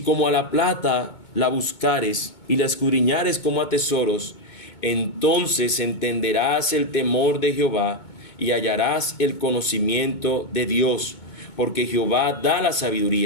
a la plata la buscares y la escudriñares como a tesoros, entonces entenderás el temor de Jehová y hallarás el conocimiento de Dios, porque Jehová da la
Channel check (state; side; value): late; right; 2.2 ms